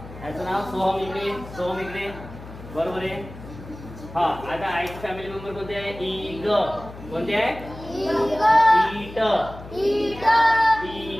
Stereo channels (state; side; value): noise; left; hum, 15 dB below the sound